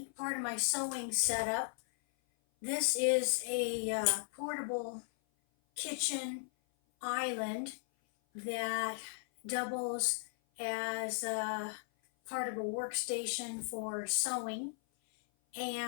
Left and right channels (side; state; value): right; silent; 53 dB below the other